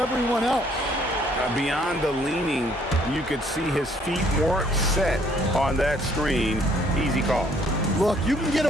else. Beyond the leaning, you could see his feet weren't set on that screen. Easy call. Look, you can get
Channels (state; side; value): normal; both; correlation 0.63